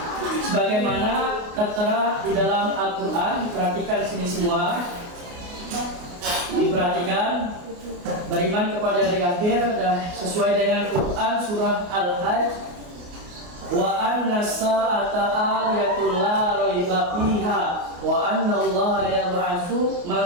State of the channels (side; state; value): left; late; 28 ms